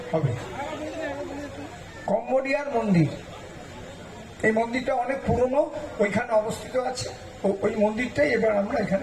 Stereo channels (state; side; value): identical; both; correlation 1.00